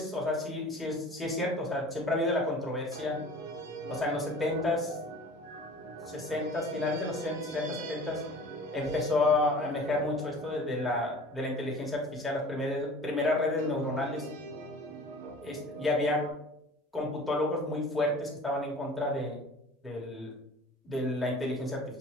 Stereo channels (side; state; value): both; normal; correlation 0.43